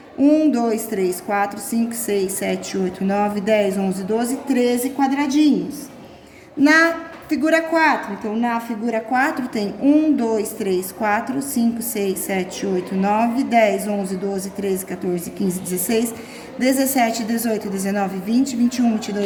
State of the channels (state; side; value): identical; both; correlation 1.00